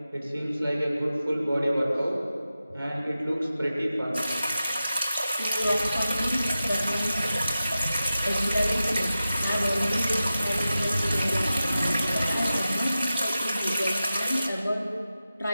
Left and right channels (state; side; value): inverted; both; correlation -0.93